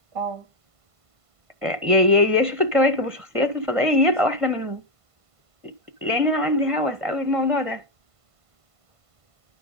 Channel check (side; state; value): left; late; 1.5 ms